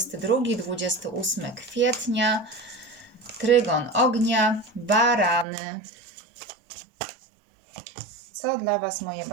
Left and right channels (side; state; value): left; drops out; at 5.5 s